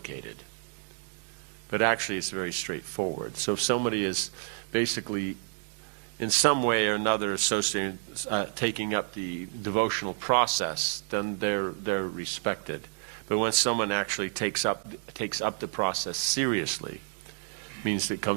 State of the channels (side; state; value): left; silent; digital silence